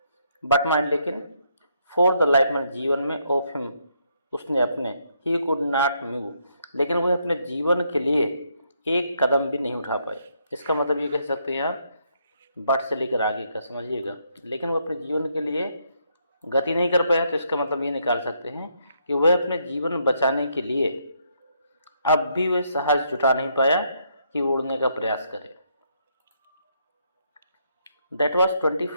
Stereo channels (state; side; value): inverted; both; correlation -0.74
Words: बट माइंड लेकिन फॉर द लाइफ में जीवन में ऑफ हिम उसने अपने ही कुड नॉट मूव लेकिन वह अपने जीवन के लिए एक कदम भी नहीं उठा पाए। इसका मतलब ये कह सकते हैं आप बट से लेकर आगे का समझिएगा, लेकिन वो अपने जीवन के लिए गति नहीं कर पाया तो इसका मतलब ये निकाल सकते हैं कि वह अपने जीवन बचाने के लिए अब भी वह साहस जुटा नहीं पाया कि उड़ने का प्रयास करे। दैट वॉज